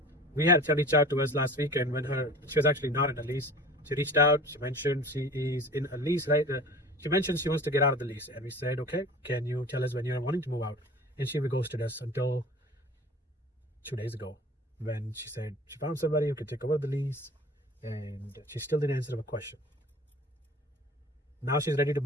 We had a reach out to us last weekend when she was actually not in a lease. She reached out, she mentioned she is in a lease, right? She mentioned she wants to get out of the lease. And we said, okay, can you tell us when you're wanting to move out? And she ghosted us until 2 days ago when she said she found somebody who could take over the lease, and she still didn't answer a question. Now she's ready to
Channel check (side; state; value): both; normal; correlation 0.41